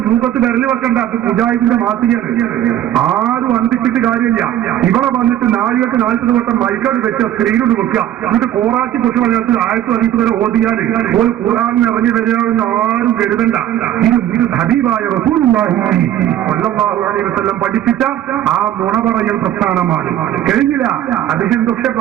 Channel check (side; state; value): left; quieter; 11.9 dB